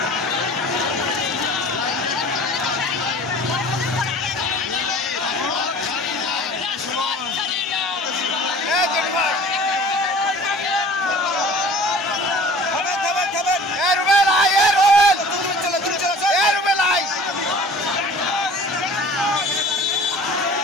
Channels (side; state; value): both; normal; correlation 0.46